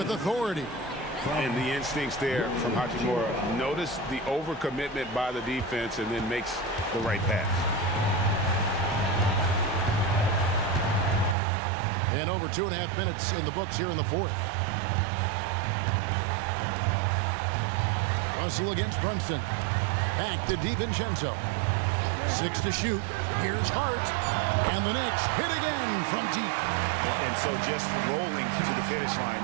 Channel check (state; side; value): drops out; left; at 11.4 s